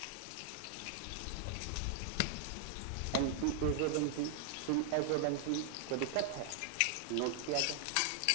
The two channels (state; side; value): different; both; correlation 0.00